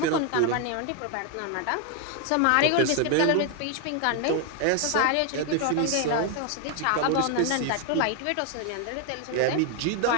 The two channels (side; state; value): both; different; correlation 0.01